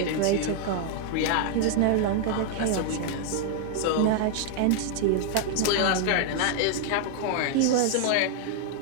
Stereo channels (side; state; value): both; different; correlation 0.00